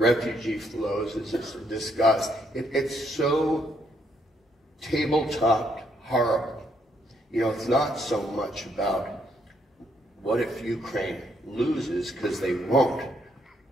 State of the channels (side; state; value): both; normal; correlation 0.73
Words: flows, it's discussed. It's so tabletop horrible. You know, it's not so much about what if Ukraine loses, because they won't.